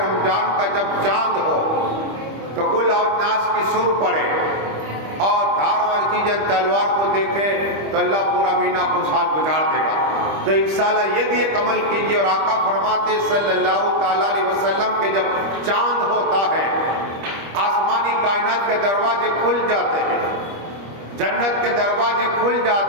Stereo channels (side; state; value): left; late; 25 ms